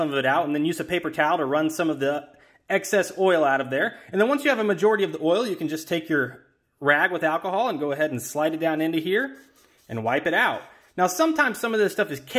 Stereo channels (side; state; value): both; identical; correlation 1.00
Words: of it out, and then use a paper towel to run some of the excess oil out of there. And then once you have a majority of the oil, you can just take your rag with alcohol and go ahead and slide it down into here and wipe it out. Now, sometimes some of this stuff is